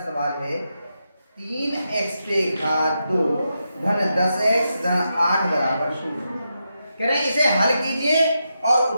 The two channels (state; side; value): inverted; both; correlation -0.86